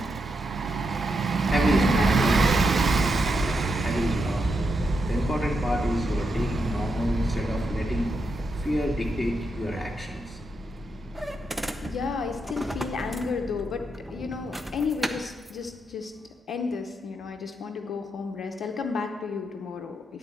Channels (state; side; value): normal; both; correlation 0.83